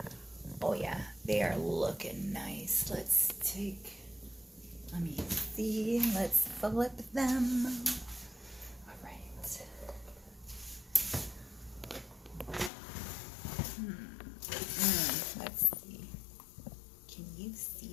Oh yeah, they are looking nice. Let me see, let's flip them. All right. Let's see. Can you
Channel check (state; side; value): drops out; right; at 12.7 s